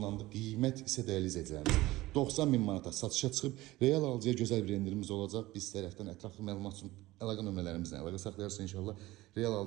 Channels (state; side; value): quieter; left; 18.3 dB